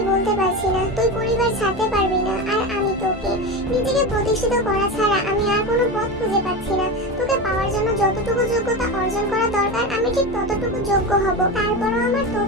বলতে পারছি না। তুই পরিবার ছাড়তে পারবি না, আর আমি তোকে নিজেকে প্রতিষ্ঠিত করা ছাড়া আমি আর কোনো পথ খুঁজে পাচ্ছি না। তোকে পাওয়ার জন্য যতটুকু যোগ্যতা অর্জন করা দরকার আমি ঠিক ততটুকু যোগ্য হব। তারপরও আমার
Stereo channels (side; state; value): both; normal; correlation 0.22